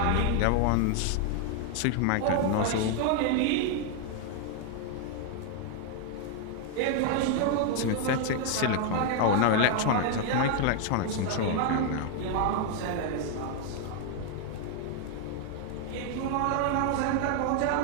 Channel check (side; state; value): both; different; correlation 0.00